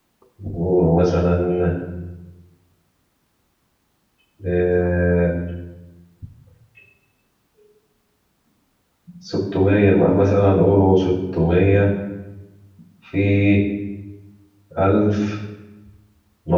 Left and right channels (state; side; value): identical; both; correlation 1.00